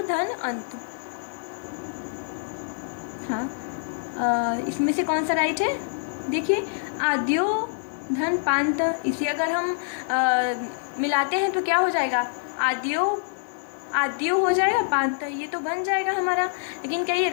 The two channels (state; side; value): silent; right; 61 dB below the other